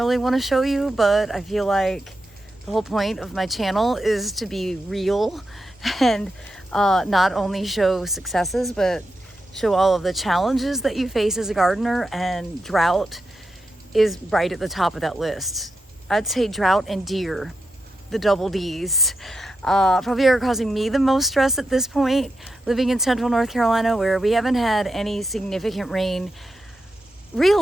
want to show you, but I feel like the whole point of my channel is to be real and not only show successes, but show all of the challenges that you face as a gardener, and drought is right at the top of that list. I'd say drought and deer, the double Ds, probably are causing me the most stress at this point, living in central North Carolina, where we haven't had any significant rain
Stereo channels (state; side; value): normal; both; correlation 0.88